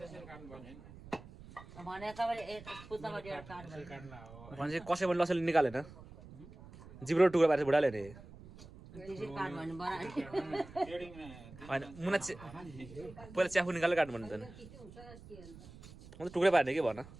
पर्ने भने कसै पनि लसले निकालेन जिब्रो टुक्रा पारेर बुढाले नि होइन मुना पहिला च्याफु निकालेर काट्नु भन्नु त अन्त टुक्रै पार्ने के भन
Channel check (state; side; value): noise; right; rumble, 17 dB below the sound